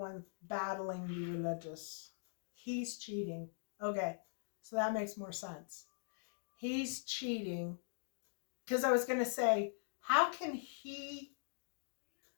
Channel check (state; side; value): silent; right; digital silence